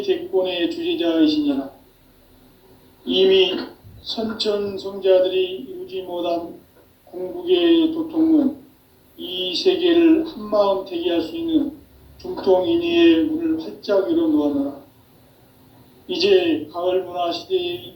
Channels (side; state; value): both; identical; correlation 1.00